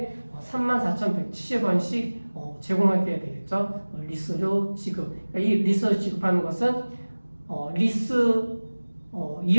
34,170원씩 제공하게 되겠죠. 리스료 지급. 그러니까 이 리스를 지급하는 것은 리스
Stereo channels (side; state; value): both; inverted; correlation -1.00